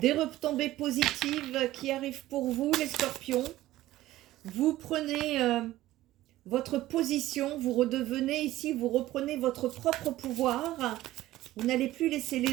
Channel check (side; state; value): left; quieter; 15.7 dB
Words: retombées positives qui arrivent pour vous, les scorpions. Vous prenez votre position, vous redevenez ici, vous reprenez votre propre pouvoir. Vous n'allez plus laisser